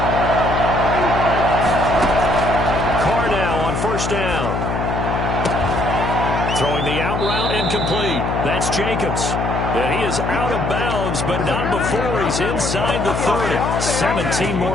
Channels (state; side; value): noise; left; hum, 2 dB below the sound